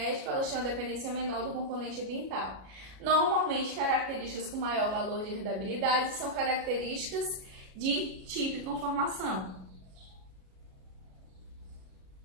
elas têm uma dependência menor do componente ambiental. Normalmente, características com maior valor de herdabilidade são características de tipo e conformação.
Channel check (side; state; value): left; late; 37 ms